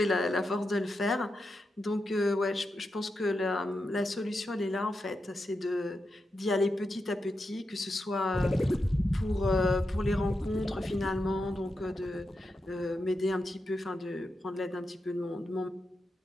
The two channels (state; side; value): normal; both; correlation 0.87